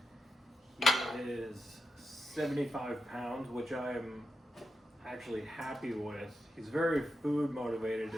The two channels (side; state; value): both; normal; correlation 0.87